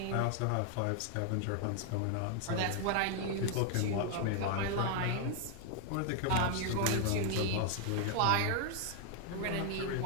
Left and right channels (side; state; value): both; different; correlation 0.00